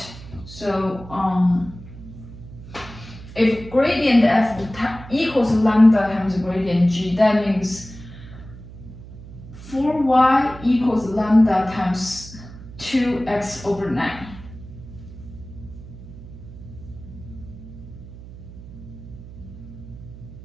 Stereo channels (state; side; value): noise; right; hum, 16 dB below the sound